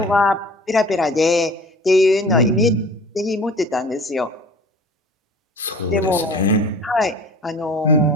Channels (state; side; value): normal; both; correlation 0.44